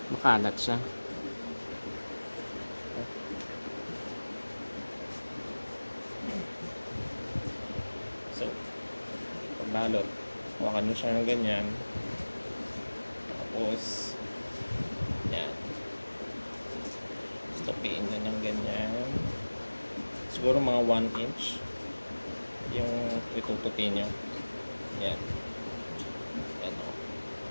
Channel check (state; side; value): inverted; both; correlation -1.00